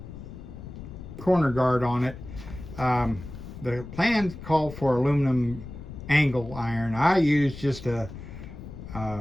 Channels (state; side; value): noise; left; rumble, 12 dB below the sound